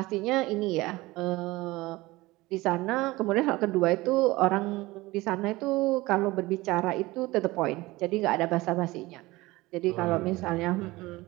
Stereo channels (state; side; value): quieter; left; 20.2 dB